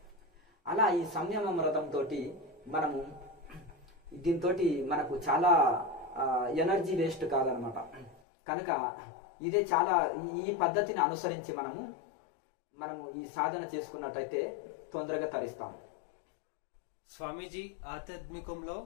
అలా ఈ సంయమ వ్రతంతో మనము దీంతో మనకు చాలా ఎనర్జీ వేస్ట్ కాదనమాట. కనుక ఇదే చాలా ఈ పద్ధతిని అనుసరించి మనము ఈ సాధన చేసుకున్నట్టయితే తొందరగా తరిస్తాం. స్వామీజీ, ఆధ్యాత్మికంలో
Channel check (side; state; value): right; drops out; at 8.2 s